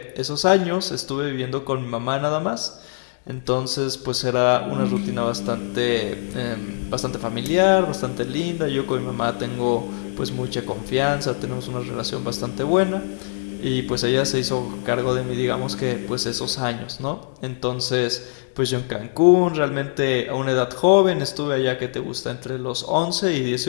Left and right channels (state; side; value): silent; right; 59 dB below the other